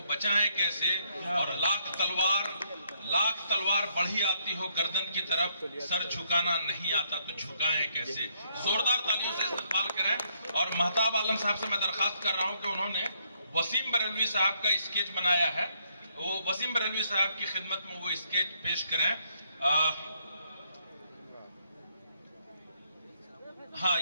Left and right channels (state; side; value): inverted; both; correlation -0.71